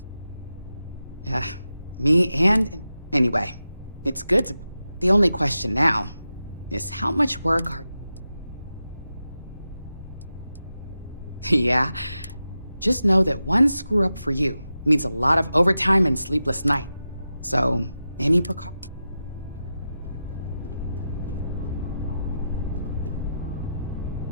Yeah, me and... Anyway, it's good to... The only question now is how much work are... Yeah, just know that one screw-up for you means a lot of overtime and sleepless night. So, any precaution...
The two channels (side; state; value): both; inverted; correlation -0.90